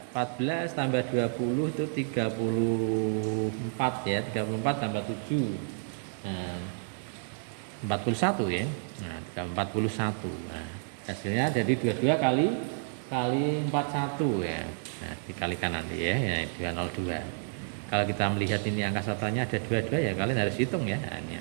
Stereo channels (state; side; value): silent; left; digital silence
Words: 14 tambah 20 itu 34 ya, 34 tambah 7. Nah, 41 ya. Nah, 41. Nah, hasilnya jadi 22 kali 41 ya. Nah, dikalikan nanti ya, 202. Kalau kita melihat ini angka satuannya ada 22 ya kalian harus hitung ya. Ini